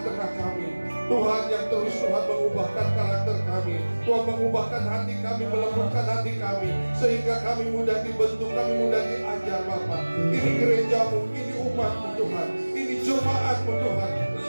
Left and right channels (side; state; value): both; inverted; correlation -1.00